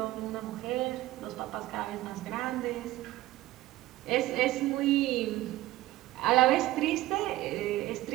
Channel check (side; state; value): left; quieter; 16.8 dB